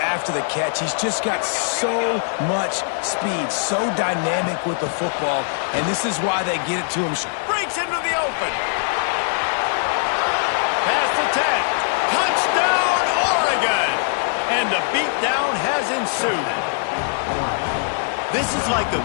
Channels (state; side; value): silent; right; 55 dB below the other